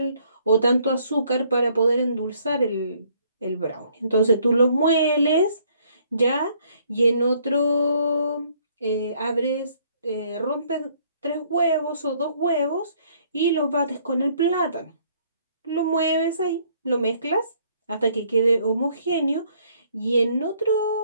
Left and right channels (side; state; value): both; inverted; correlation -0.64